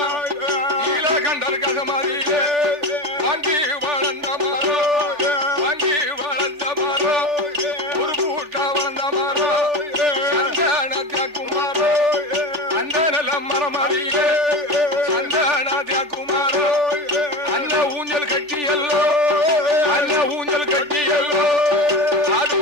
நீலகண்டர் கசமதியிலே வாங்கி வளர்ந்த மரோ வாங்கி வளர்ந்த மரோ ஒரு பூட்டா வளர்ந்த மரோ சந்தனத்தியாக்குமாரோ அந்த நல்ல மரம் அறியிலே சந்தனத்தியாக்குமாரோ அந்த ஊஞ்சல் கட்டியல்லோ அந்த ஊஞ்சல் கட்டியல்லோ அது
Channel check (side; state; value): left; late; 3.4 ms